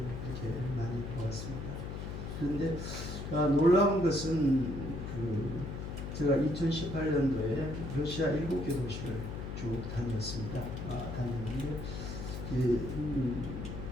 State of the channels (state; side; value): noise; left; hum, 6 dB below the sound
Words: 많이 보았습니다. 그런데 놀라운 것은 제가 2018년도에 러시아 7개 도시를 쭉 다녔습니다. 다녔는데